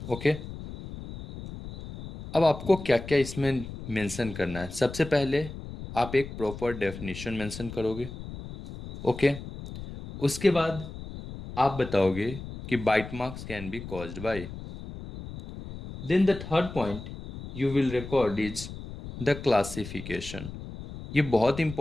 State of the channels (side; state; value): left; noise; rumble, 11 dB below the sound